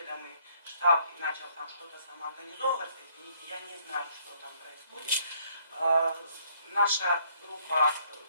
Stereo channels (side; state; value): both; inverted; correlation -0.66